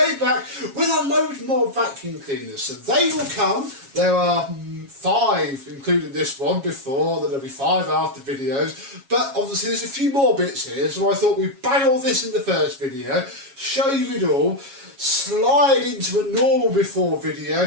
back with a load more vacuum cleaners. So they will come. There are 5, including this one, before, then there'll be 5 after videos, but obviously there's a few more bits here, so I thought we'd bang all this in the first video, show you it all, slide into a normal before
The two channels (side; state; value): left; late; 7.3 ms